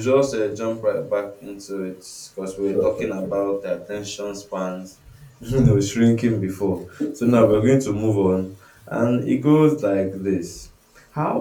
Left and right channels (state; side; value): identical; both; correlation 1.00